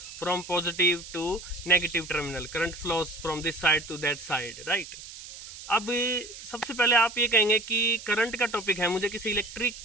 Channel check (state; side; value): noise; right; hiss, 14 dB below the sound